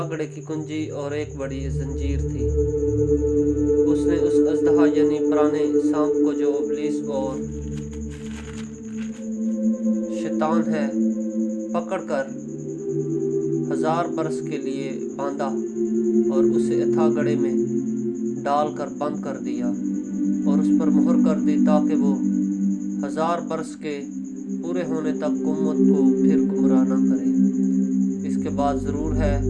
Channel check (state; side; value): identical; both; correlation 1.00